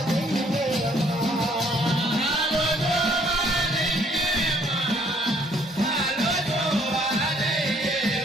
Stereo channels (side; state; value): both; normal; correlation 0.63